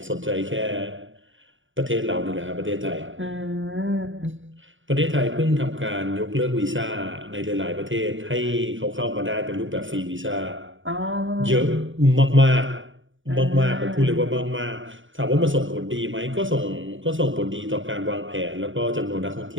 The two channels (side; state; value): left; late; 0.56 ms